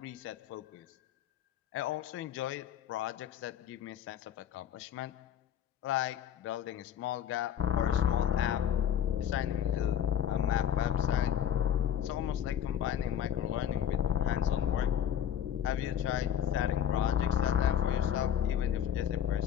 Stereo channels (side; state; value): right; quieter; 9.3 dB